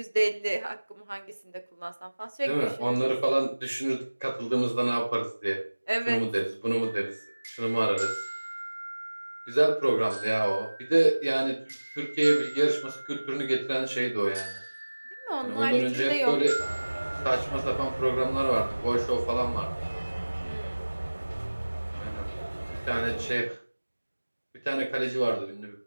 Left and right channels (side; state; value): both; inverted; correlation -1.00